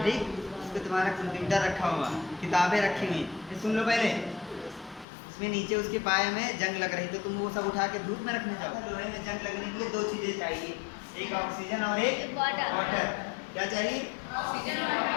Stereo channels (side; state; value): right; drops out; at 5.1 s